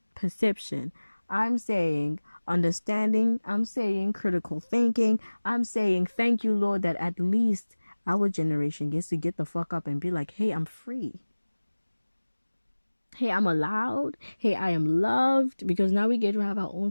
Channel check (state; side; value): inverted; both; correlation -1.00